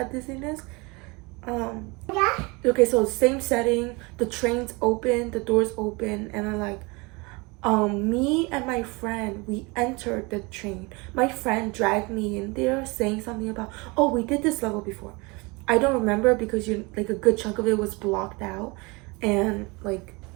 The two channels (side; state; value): left; quieter; 26.7 dB